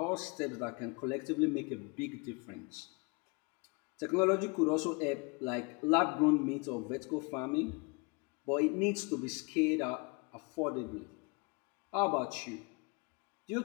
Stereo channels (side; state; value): right; quieter; 30.2 dB